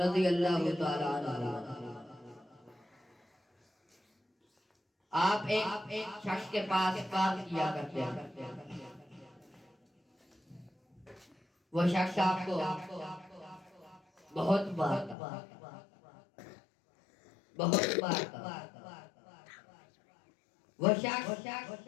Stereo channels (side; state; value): right; drops out; at 15.2 s